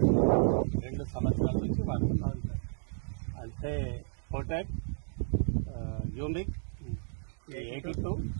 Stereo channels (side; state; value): left; silent; 56 dB below the other